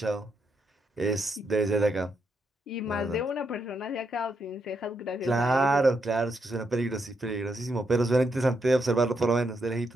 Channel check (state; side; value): normal; both; correlation 0.80